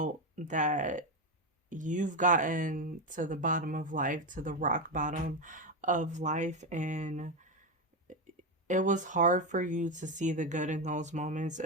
that you've gotten to the bottom of life, to the rock bottom of life, and it was hard for you to see the good in those moments.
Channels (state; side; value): normal; both; correlation 0.11